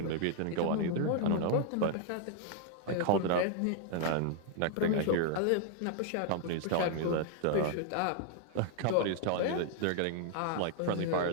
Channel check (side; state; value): both; different; correlation 0.00